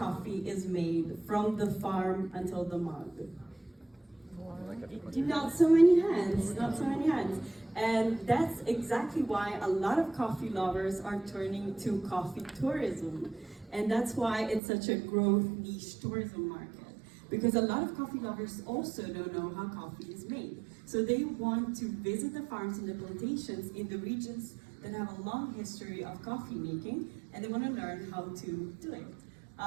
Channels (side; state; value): left; drops out; at 14.6 s